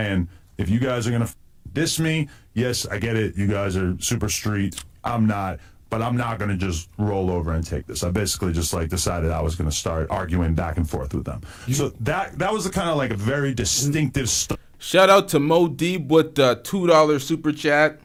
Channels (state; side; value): identical; both; correlation 1.00